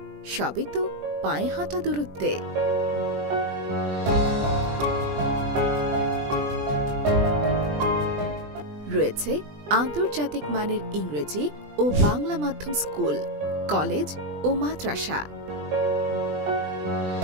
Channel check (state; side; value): late; left; 20 ms